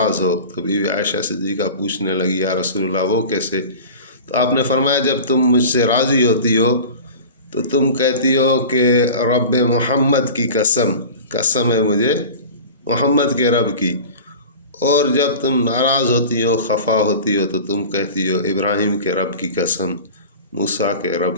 ہو؟ تو بیوی عائشہ صدیقہ پوچھنے لگی یا رسول اللہ وہ کیسے؟ تو آپ نے فرمایا جب تم مجھ سے راضی ہوتی ہو تو تم کہتی ہو کہ رب محمد کی قسم ہے مجھے محمد کے رب کی، اور جب تم ناراض ہوتی ہو خفا ہوتی ہو تو تم کہتی ہو ابراہیم کے رب کی قسم، موسیٰ کے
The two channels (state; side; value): inverted; both; correlation -0.35